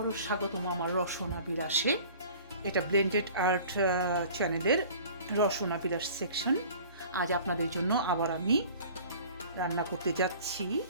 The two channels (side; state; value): both; inverted; correlation -0.46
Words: স্বাগতম আমার রসনা বিলাসে। এটা ব্লেন্ডেড আর্ট চ্যানেলের রসনা বিলাস সেকশন। আজ আপনাদের জন্য আবার আমি রান্না করতে যাচ্ছি